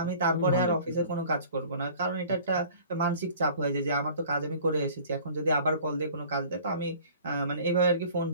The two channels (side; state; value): both; inverted; correlation -0.48